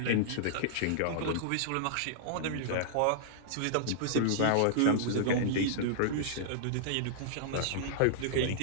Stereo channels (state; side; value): different; both; correlation -0.02